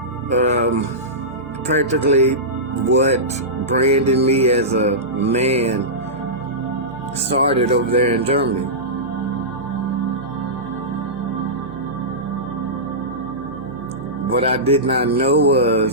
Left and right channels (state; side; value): noise; right; hum, 19 dB below the sound